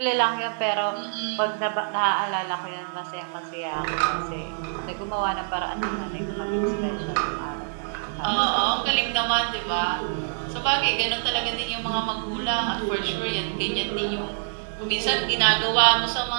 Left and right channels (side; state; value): left; silent; digital silence